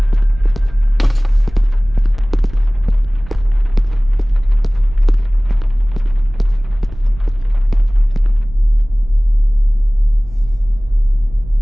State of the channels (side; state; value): right; noise; rumble, 16 dB below the sound